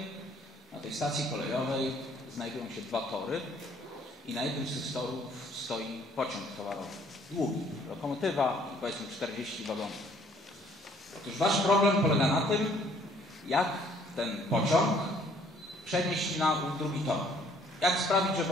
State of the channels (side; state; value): both; normal; correlation 0.61